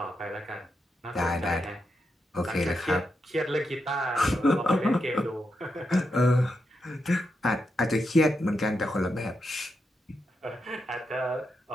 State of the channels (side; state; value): both; normal; correlation 0.85